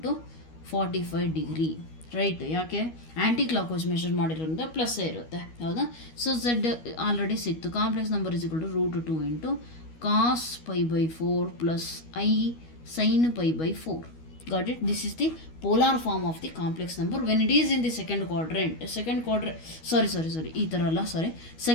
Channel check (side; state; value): right; late; 12 ms